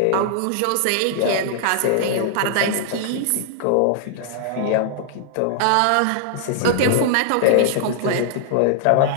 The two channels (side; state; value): both; different; correlation -0.01